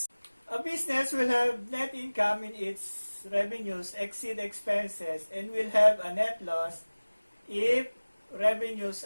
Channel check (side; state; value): both; inverted; correlation -1.00